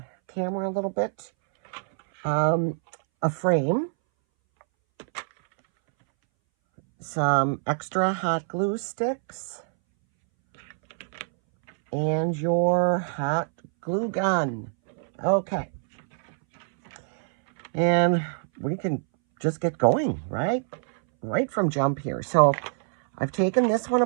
camera a little bit. A frame, some extra hot glue sticks, and your hot glue gun. Okay. And we can just get going, right? Right from jump here. So I've taken this one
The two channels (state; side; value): silent; left; 62 dB below the other